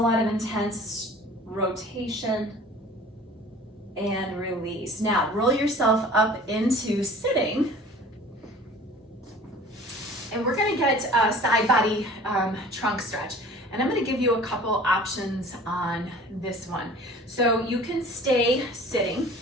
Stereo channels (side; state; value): both; normal; correlation 0.45